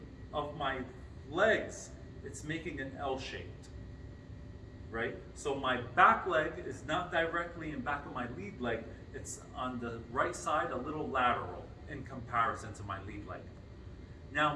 of my legs, it's making an L shaped, right? So my back leg is not directly in back of my lead leg, it's on the right side, a little lateral in comparison to my lead leg.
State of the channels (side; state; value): both; identical; correlation 1.00